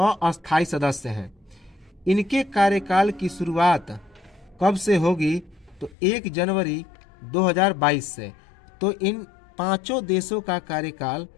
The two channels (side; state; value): right; drops out; at 6.0 s